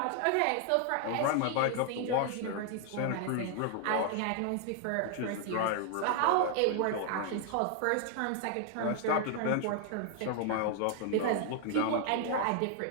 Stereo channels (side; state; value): both; different; correlation 0.00